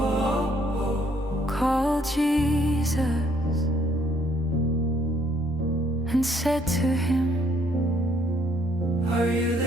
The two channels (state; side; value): normal; both; correlation 0.66